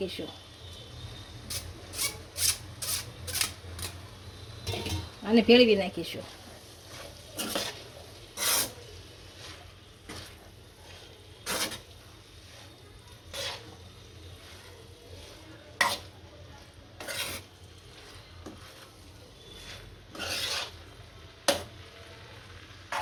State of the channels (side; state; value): both; identical; correlation 1.00